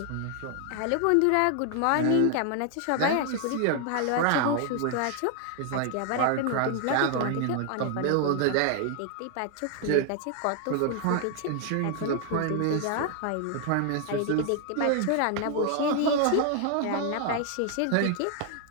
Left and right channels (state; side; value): different; both; correlation 0.00